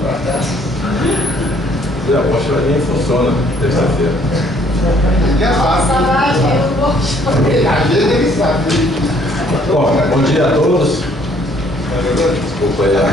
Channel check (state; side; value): normal; both; correlation 0.62